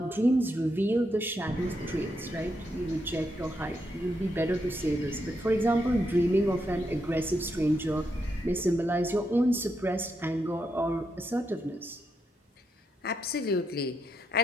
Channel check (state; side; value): normal; both; correlation 0.81